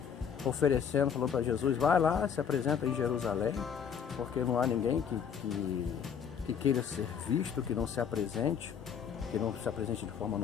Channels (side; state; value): right; quieter; 7.6 dB